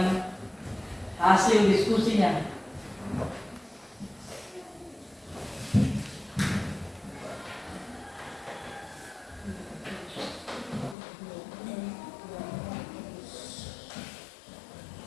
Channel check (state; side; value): drops out; right; at 11.0 s